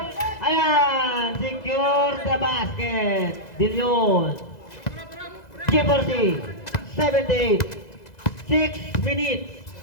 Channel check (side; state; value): right; late; 2.0 ms